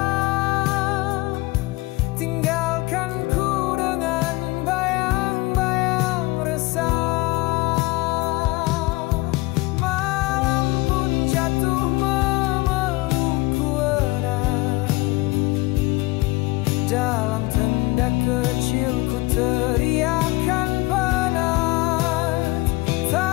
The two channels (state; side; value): quieter; right; 21.8 dB